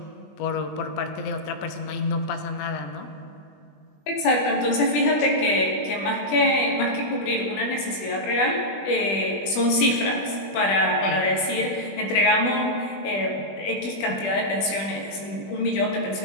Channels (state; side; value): late; right; 20 ms